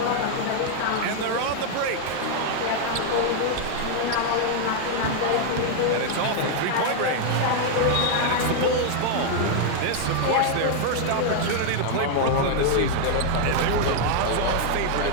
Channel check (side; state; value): both; different; correlation 0.00